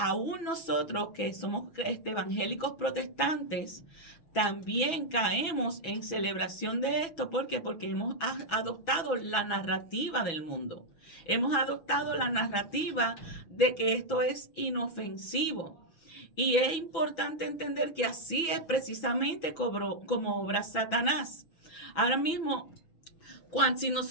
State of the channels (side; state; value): right; late; 6.0 ms